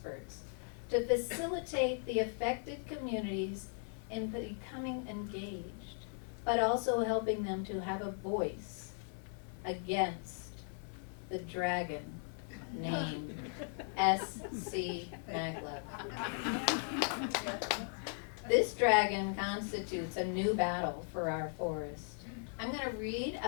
to facilitate the affected communities in becoming engaged, but also helping them to have a voice against the dragon named S.C. Maglev. This dragon constitutes a new battle for our forest. I'm going to read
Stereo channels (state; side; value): silent; right; 53 dB below the other